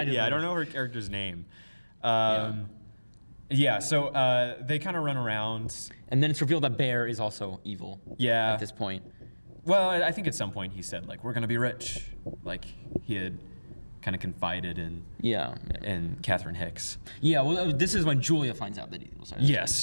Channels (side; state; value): both; inverted; correlation -1.00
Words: don't know her character's name. So they kind of run around. And then it's revealed that Bear is also evil. Yeah. At this point. Well, I think at some point he said, we're going to be rich. He had kind of confided in Catherine Hicks. Yeah, well, this is when Julia finds out that he's evil.